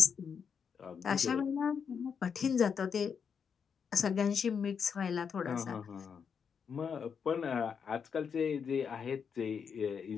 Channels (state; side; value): quieter; right; 6.7 dB